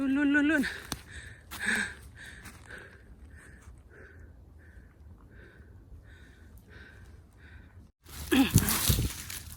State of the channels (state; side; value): identical; both; correlation 1.00